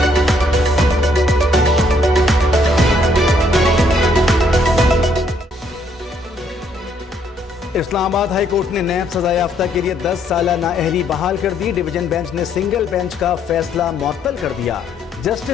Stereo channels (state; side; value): normal; both; correlation 0.69